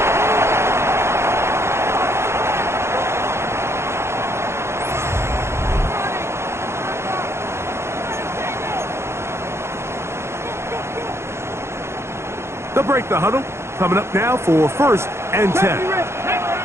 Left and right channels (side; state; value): left; late; 0.13 ms